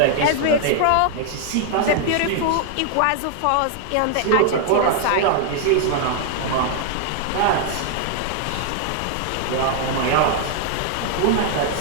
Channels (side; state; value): both; different; correlation 0.00